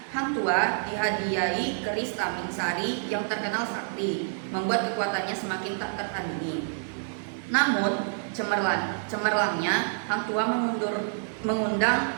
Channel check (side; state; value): left; silent; digital silence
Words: Hang Tuah dihadiahi keris Taming Sari yang terkenal sakti, membuat kekuatannya semakin tak tertandingi. Namun cemerlangnya Hang Tuah